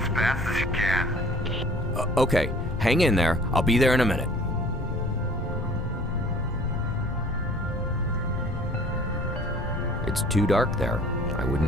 fast as you can. Okay, hang in there. I'll be there in a minute. It's too dark there. I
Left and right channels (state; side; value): normal; both; correlation 0.51